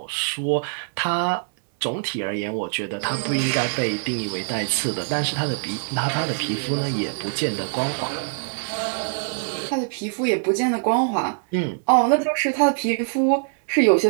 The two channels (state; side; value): silent; left; digital silence